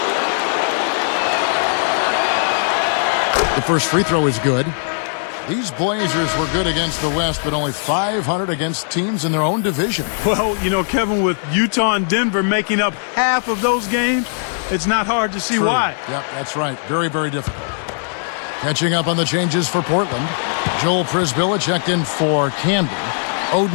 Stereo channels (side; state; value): right; silent; digital silence